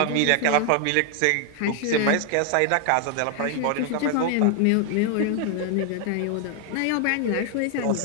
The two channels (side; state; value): both; different; correlation 0.00